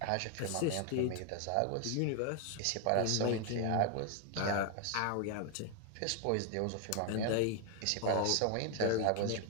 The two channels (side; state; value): both; different; correlation 0.01